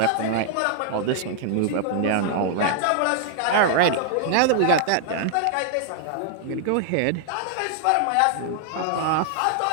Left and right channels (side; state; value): both; different; correlation 0.00